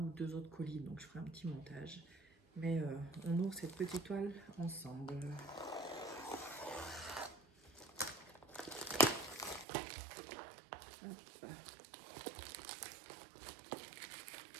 deux autres colis. Donc, je ferai un petit montage. Mais on ouvre cette petite toile ensemble. Hop.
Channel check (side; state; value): left; drops out; at 9.7 s